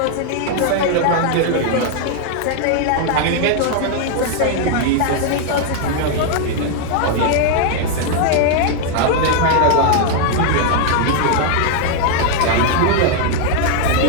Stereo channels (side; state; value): both; different; correlation 0.00